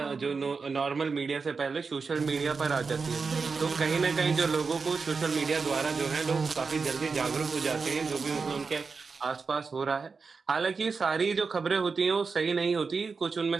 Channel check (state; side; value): quieter; left; 4.8 dB